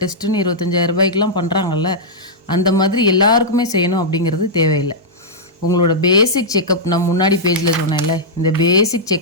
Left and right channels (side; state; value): both; normal; correlation -0.08